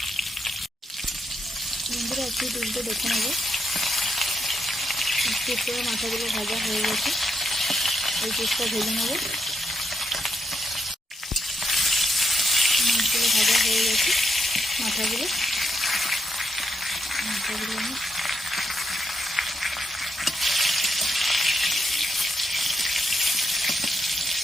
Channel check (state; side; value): normal; both; correlation 0.80